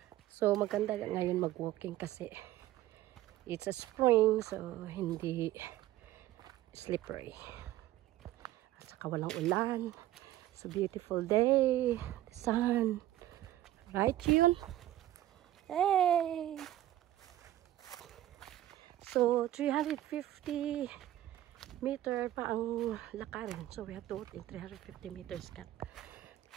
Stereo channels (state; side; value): quieter; left; 14.0 dB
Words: So maganda ngayon mag-walking kasi it's a spring, so hindi slippery. At saka walang ulan. It's a beautiful day. The sun. Right, Yun? Hey! So 350 meter pa ang lakarin, so we have to walk in 350 meters